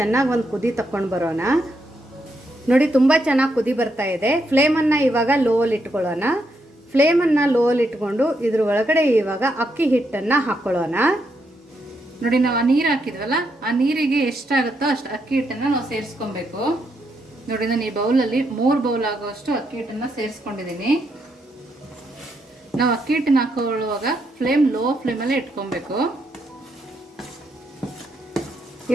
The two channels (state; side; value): normal; both; correlation 0.79